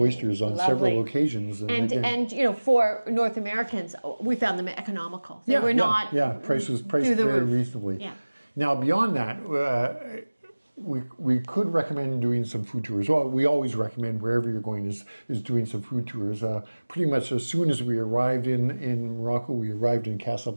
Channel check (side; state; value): both; inverted; correlation -1.00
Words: on several occasions. And for North Americans, we found them economical. They were not price was priced very reasonably. Yeah. Now beyond that, we could recommend doing some food tours. Well, we always recommend wherever you're going is doing some food tours. Pretty much as soon as we arrived in Morocco, we arrived in